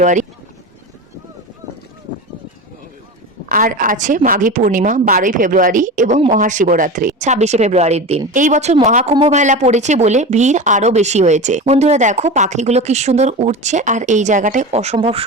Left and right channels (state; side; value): normal; both; correlation 0.27